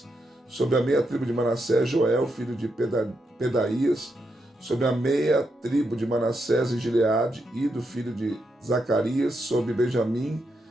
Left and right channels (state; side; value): normal; both; correlation 0.83